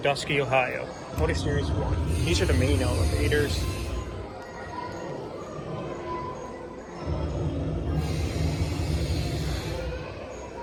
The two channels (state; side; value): identical; both; correlation 1.00